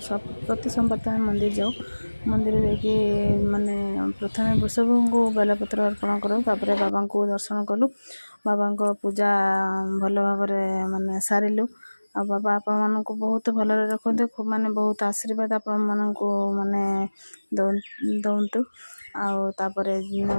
सब प्रति सोमवार तो मंदिर जाऊ। मंदिर जाकि माने प्रथम वृषभ को बेलपत्र अर्पण करूँ, तापर बाबा को दर्शन कलु। बाबा को पूजा भल भाव माने सारिलु। आ बाबा आपण मानक बहुत भल रखते, खूब माने बहुत आशीर्वाद आपण मानक माने दौंतु। तापर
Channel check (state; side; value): inverted; both; correlation -1.00